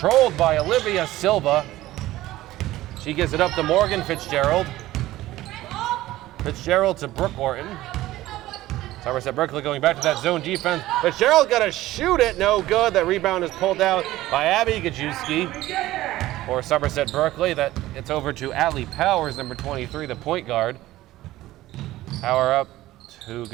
by Olivia Silva. She gives it up to Morgan Fitzgerald. Fitzgerald to Brooke Orton. Somerset-Berkley going back to that zone defense. Fitzgerald got to shoot it, no good. That rebound is pulled out by Abby Gajewski for Somerset-Berkley. That it's over to Allie Powers, number 23, the point guard. Power up to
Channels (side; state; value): left; quieter; 16.1 dB